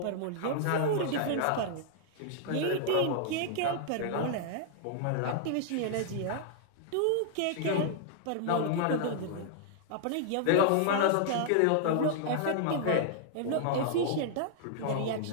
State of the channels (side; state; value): both; different; correlation -0.01